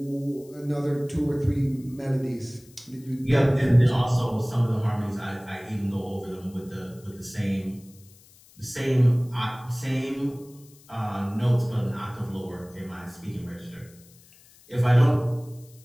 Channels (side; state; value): left; noise; hiss, 26 dB below the sound